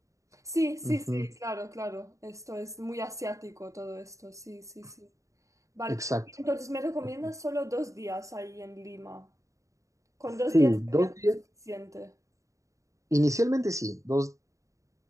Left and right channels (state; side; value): late; left; 0.15 ms